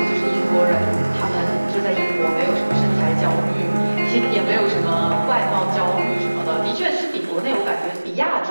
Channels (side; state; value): both; inverted; correlation -1.00